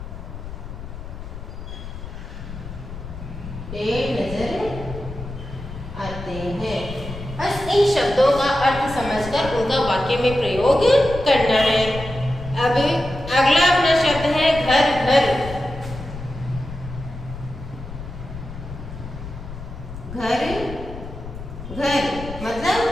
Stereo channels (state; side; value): noise; left; rumble, 11 dB below the sound